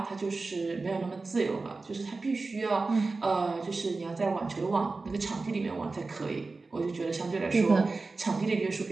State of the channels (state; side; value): quieter; left; 3.7 dB